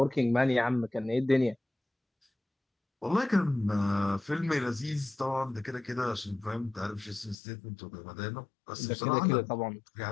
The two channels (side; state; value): right; drops out; at 7.4 s